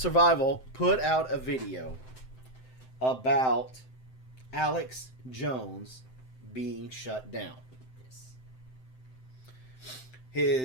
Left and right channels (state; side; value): late; right; 7.8 ms